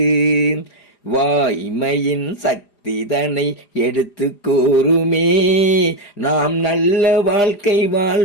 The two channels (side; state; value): right; late; 4.9 ms